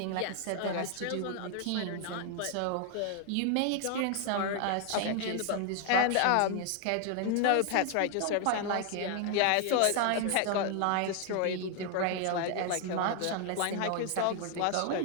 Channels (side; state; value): both; different; correlation 0.00